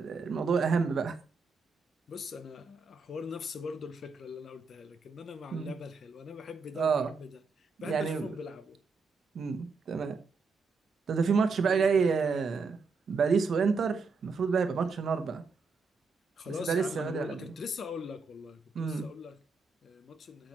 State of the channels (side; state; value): left; quieter; 4.4 dB